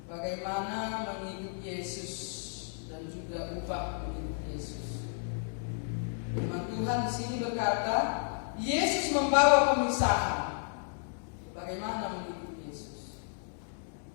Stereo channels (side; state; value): right; silent; digital silence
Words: bagaimana mengikuti Yesus dan juga upah mengikuti Yesus. Firman Tuhan di sini berkata, Yesus membawa pemisahan. Bagaimana mengikuti Yesus?